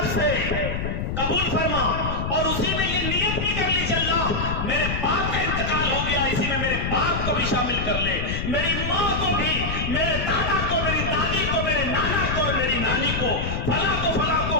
سے قبول فرما، اور اسی میں یہ نیت بھی کر لیجیے اللہ میرے باپ کا انتقال ہو گیا، اسی میں میرے باپ کو بھی شامل کر لے، میری ماں کو بھی، میرے دادا کو، میری دادی کو، میرے نانا کو اور میری نانی کو، فلاں کو،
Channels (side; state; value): left; noise; rumble, 2 dB below the sound